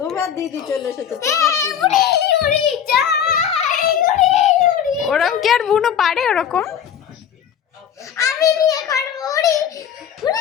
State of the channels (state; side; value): quieter; right; 8.8 dB